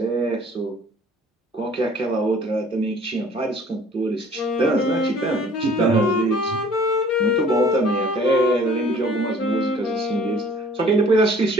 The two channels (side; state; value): both; normal; correlation 0.53